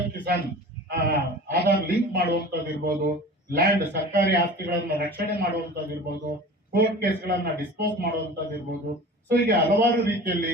ಕಿಸಾನ್ ಆಧಾರ್ ಲಿಂಕ್ ಮಾಡುವಂತದ್ದು ಇರ್ಬೋದು, ಲ್ಯಾಂಡ್ ಸರ್ಕಾರಿ ಆಸ್ತಿಗಳನ್ನ ರಕ್ಷಣೆ ಮಾಡುವಂತದ್ದು ಇರ್ಬೋದು, ಕೋರ್ಟ್ ಕೇಸ್ಗಳನ್ನ ಡಿಸ್ಪೋಸ್ ಮಾಡುವಂತದ್ದು ಇರ್ಬೋದು. ಸೊ ಹೀಗೆ ಹಲವಾರು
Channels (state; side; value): normal; both; correlation 0.38